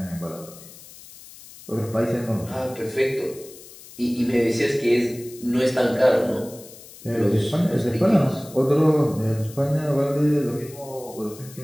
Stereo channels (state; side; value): noise; left; hiss, 19 dB below the sound